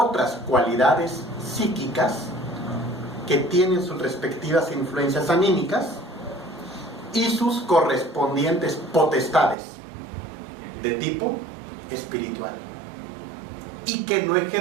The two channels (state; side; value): drops out; left; at 9.6 s